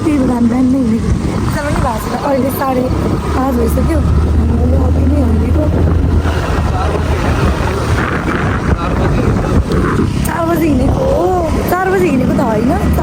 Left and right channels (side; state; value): both; identical; correlation 1.00